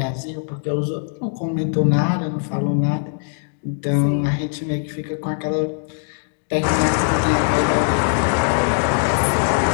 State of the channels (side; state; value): right; silent; digital silence